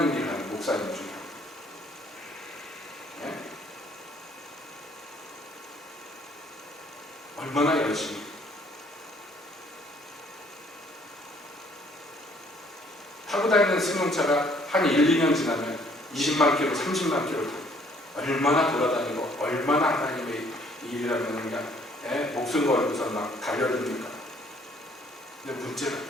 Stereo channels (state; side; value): normal; both; correlation 0.62